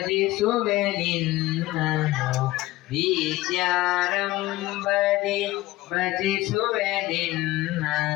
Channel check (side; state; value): right; quieter; 18.1 dB